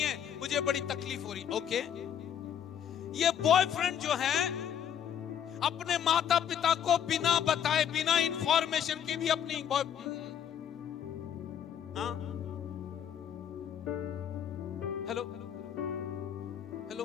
मुझे बड़ी तकलीफ हो रही। ओके। ये बॉयफ्रेंड जो है अपने माता पिता को बिना बताए, बिना इंफॉर्मेशन के भी अपनी हेलो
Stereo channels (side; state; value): right; quieter; 9.0 dB